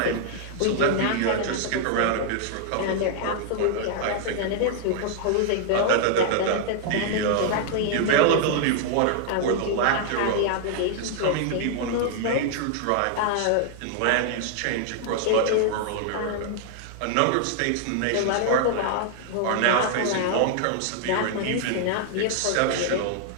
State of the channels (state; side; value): different; both; correlation -0.01